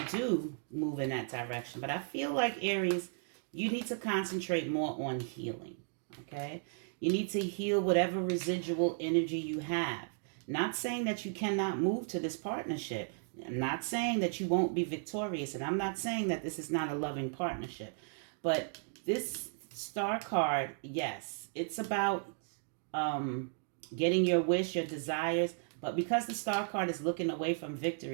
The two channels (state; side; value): silent; left; digital silence